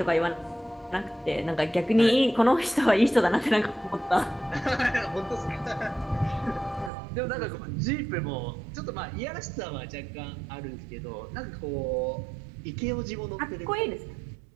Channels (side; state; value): left; drops out; at 6.9 s